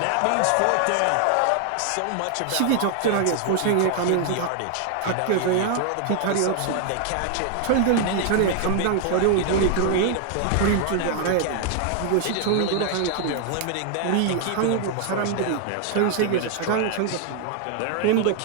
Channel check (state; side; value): different; both; correlation 0.00